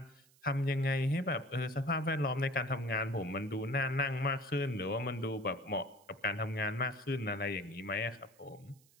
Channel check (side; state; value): right; noise; hiss, 29 dB below the sound